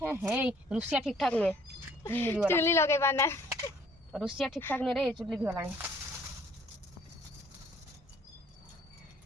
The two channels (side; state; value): both; normal; correlation 0.59